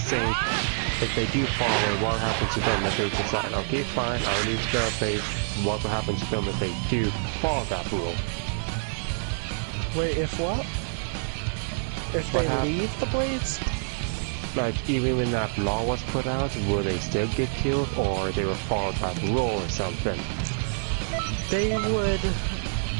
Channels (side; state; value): left; silent; digital silence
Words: saying, if they do follow, what happens to them if they decide, okay, fine, I'll leave the Blades, what will happen to them if they do follow that rule? Wait, if what? If they leave the Blades? Like, even when that law was put out, will they still get killed, or they will follow that rule or something? They